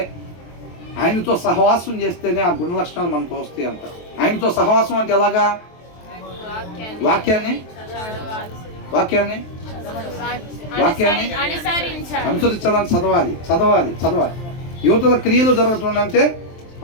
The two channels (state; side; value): late; right; 23 ms